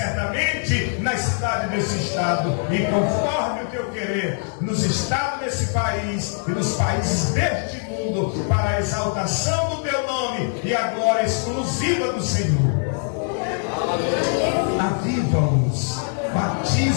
na cidade desse estado, e conforme o teu querer, nos estados desse país e nos países deste mundo, para a exaltação do teu nome e a glória exclusiva do Senhor. Aviva-os,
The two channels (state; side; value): silent; right; 58 dB below the other